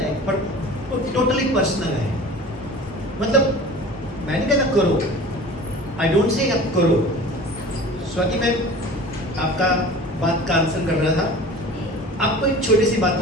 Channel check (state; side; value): normal; both; correlation 0.40